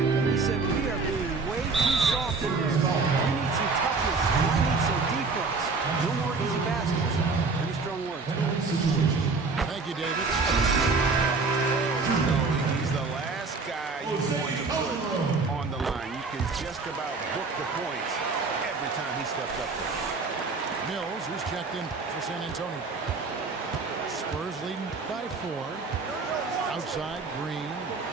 said, we are being way too soft in this. We need some toughness. I need some defense. No more easy baskets. Pretty strong words. Thank you, David. No, he's the last guy you want to put on the line. You can just about book the points every time he steps up there. Mills, who's checked in for San Antonio. Spurs leading by 4. Outside, Green.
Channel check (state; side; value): quieter; left; 4.2 dB